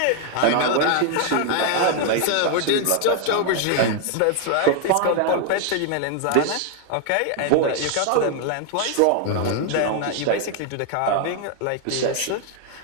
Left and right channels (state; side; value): different; both; correlation 0.00